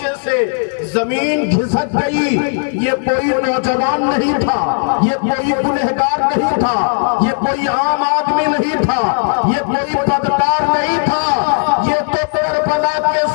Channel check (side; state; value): right; silent; 70 dB below the other